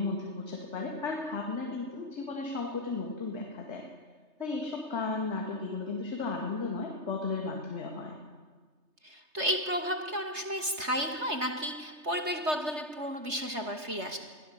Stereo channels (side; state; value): left; late; 3.3 ms